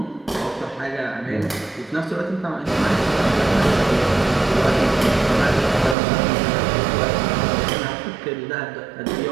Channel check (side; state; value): left; drops out; at 6.0 s